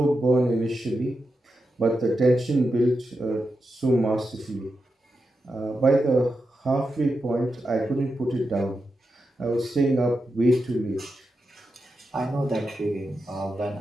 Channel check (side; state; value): both; normal; correlation 0.88